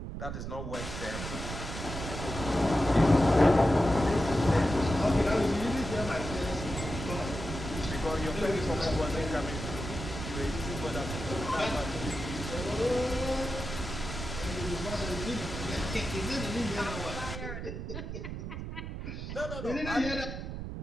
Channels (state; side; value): noise; right; rumble, 6 dB below the sound